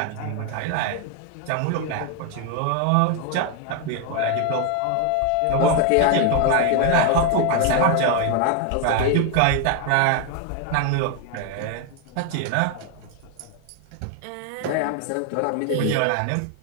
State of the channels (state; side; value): different; both; correlation 0.01